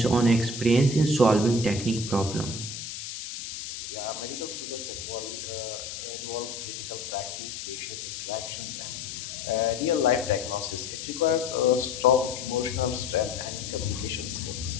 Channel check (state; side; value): noise; left; hiss, 8 dB below the sound